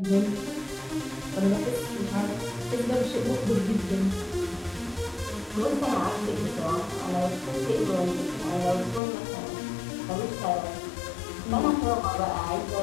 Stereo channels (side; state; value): right; drops out; at 9.0 s